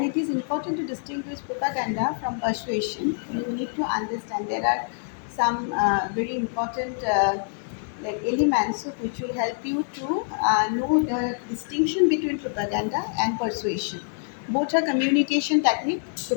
it is important to distinguish propaganda from persuasion. You need to understand there are some very important like elements which will help you to know the distinction between propaganda and persuasion. Both are communication technique.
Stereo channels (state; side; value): silent; right; digital silence